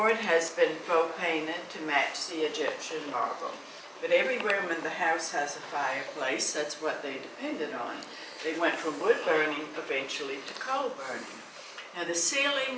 has been faux painted to match the Egyptian marble. But every room in the house has a fireplace. That's what they depended on. They went from wood burning eventually to coal burning. Now the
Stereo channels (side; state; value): both; identical; correlation 1.00